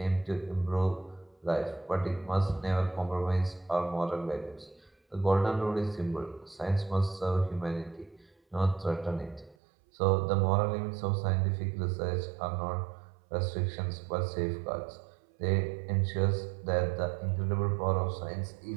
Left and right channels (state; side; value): drops out; left; at 9.6 s